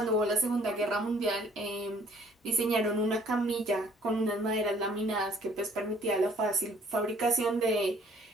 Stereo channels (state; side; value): normal; both; correlation 0.59